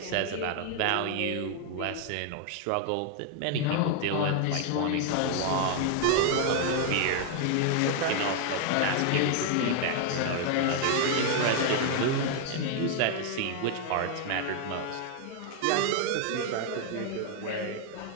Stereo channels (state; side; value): different; both; correlation 0.00